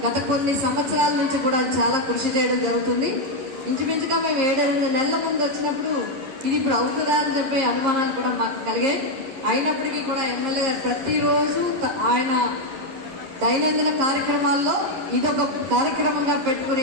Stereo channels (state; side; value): late; left; 11 ms